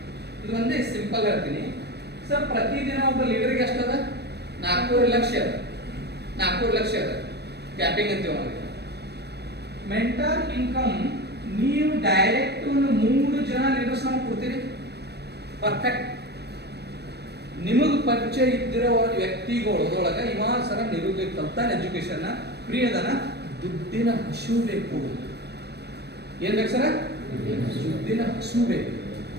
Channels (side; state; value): left; late; 0.48 ms